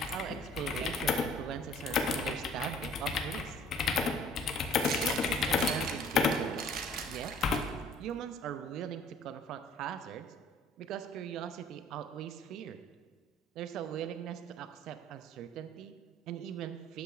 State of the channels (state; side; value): normal; both; correlation 0.54